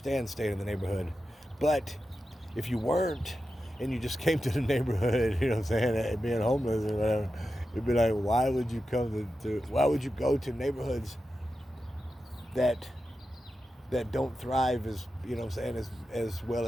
staying in the neighborhood, but if you weren't and you just came to the neighborhood, you know what I'm saying, being homeless or whatever, it'd be like, why would you why would you go to neighborhoods that don't thrive as as well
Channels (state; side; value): normal; both; correlation 0.91